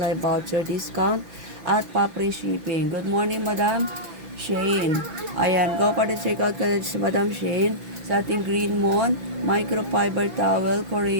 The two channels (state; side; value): late; left; 6.0 ms